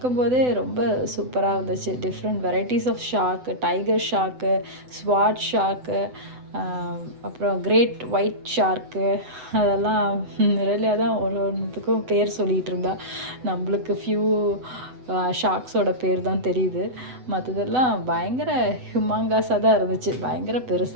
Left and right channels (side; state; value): left; late; 7.9 ms